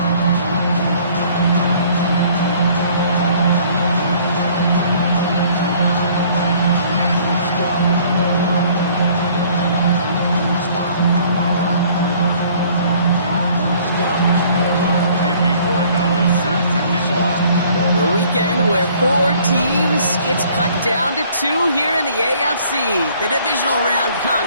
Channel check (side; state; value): both; inverted; correlation -0.57